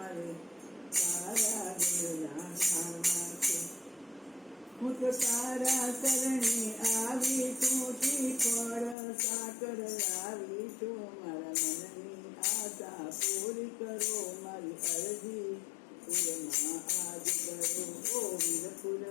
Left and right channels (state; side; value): drops out; right; at 9.0 s